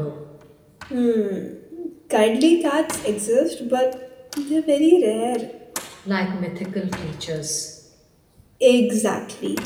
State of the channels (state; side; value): identical; both; correlation 1.00